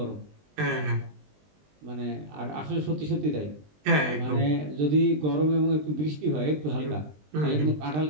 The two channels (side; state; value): left; late; 20 ms